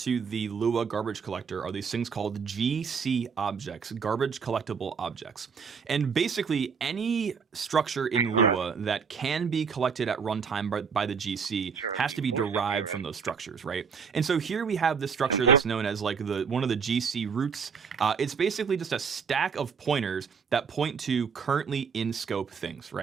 the Lua garbage collector are these things called GC objects, garbage collectible objects. And basically any structure in Lua that can be collected at runtime by the GC has to be derived from those structures, right? And so here we have this structure that's known as one of the GC roots. It's basically just a stack of pointers that point to currently in scope things,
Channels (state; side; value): quieter; left; 6.1 dB